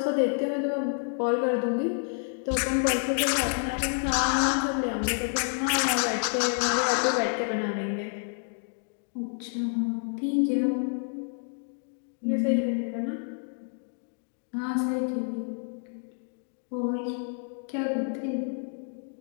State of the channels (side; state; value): right; silent; 59 dB below the other